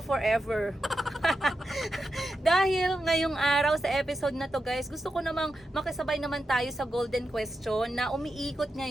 forever. Dahil ngayong araw sa episode na to guys, gusto ko namang makisabay naman tayo sa golden question na umiikot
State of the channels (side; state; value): both; normal; correlation 0.88